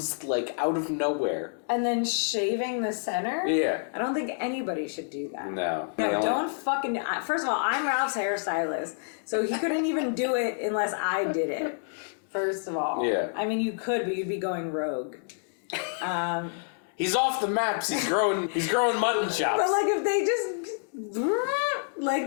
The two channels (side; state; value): right; silent; digital silence